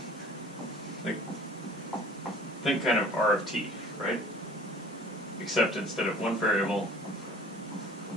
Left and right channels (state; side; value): normal; both; correlation 0.48